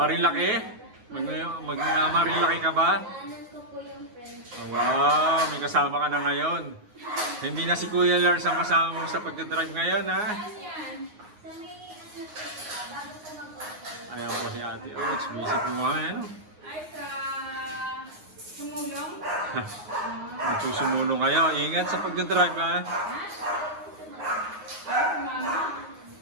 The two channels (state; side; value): late; left; 9.6 ms